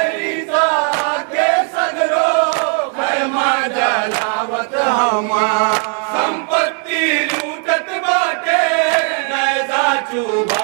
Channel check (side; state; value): left; quieter; 39.5 dB